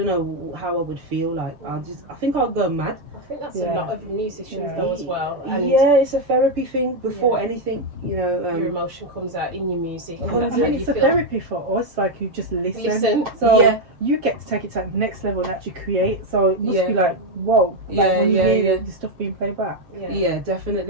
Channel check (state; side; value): late; left; 6.4 ms